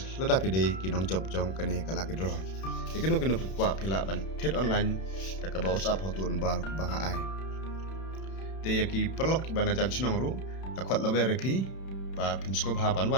lada pide kinong job jong kane kalaki dola. Ikino kino kwa pila ban tet online tak ka WhatsApp hau tuan bar banga ai. Te yaki perlok ki bana jan sinong ru tak kwat lawe repi ba pinsko ba ban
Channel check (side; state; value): right; late; 31 ms